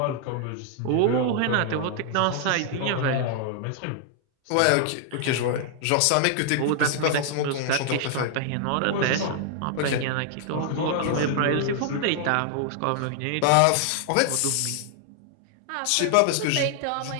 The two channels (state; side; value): different; both; correlation 0.00